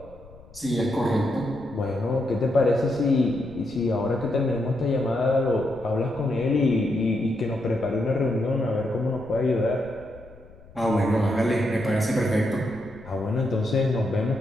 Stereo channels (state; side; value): noise; left; rumble, 22 dB below the sound